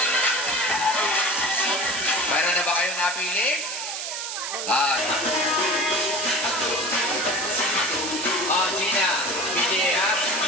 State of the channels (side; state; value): right; noise; hiss, 5 dB below the sound